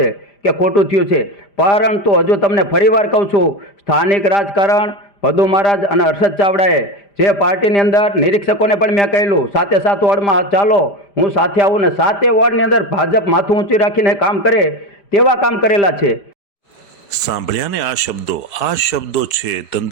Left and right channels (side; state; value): right; late; 5.0 ms